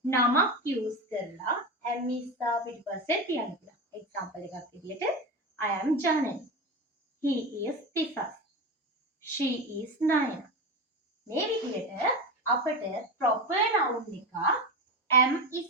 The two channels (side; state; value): both; normal; correlation 0.21